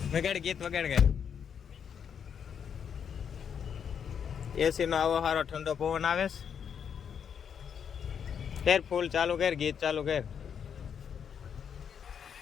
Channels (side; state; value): right; quieter; 7.6 dB